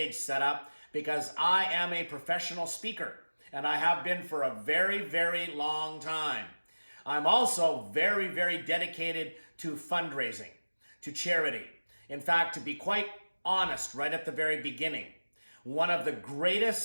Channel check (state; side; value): inverted; both; correlation -1.00